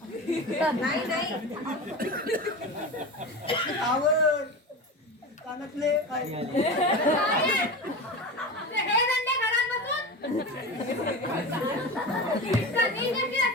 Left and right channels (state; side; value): normal; both; correlation 0.27